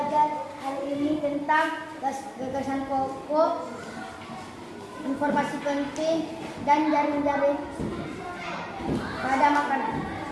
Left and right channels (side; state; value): both; identical; correlation 1.00